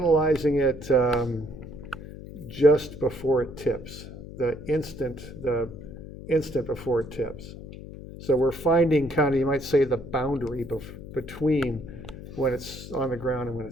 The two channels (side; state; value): left; noise; hum, 13 dB below the sound